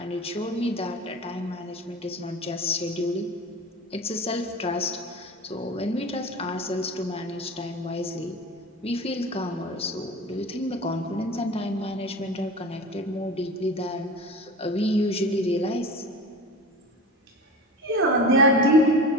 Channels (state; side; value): normal; both; correlation 0.33